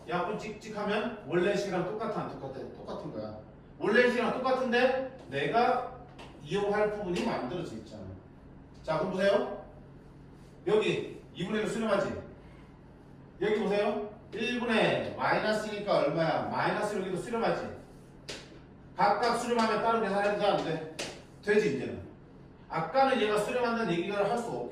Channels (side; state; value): both; identical; correlation 1.00